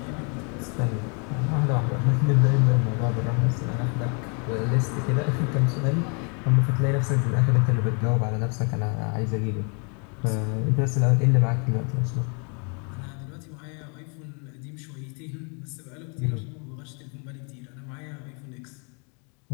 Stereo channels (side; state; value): right; quieter; 36.6 dB